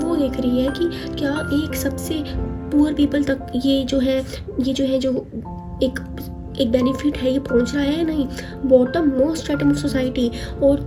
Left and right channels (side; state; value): both; identical; correlation 1.00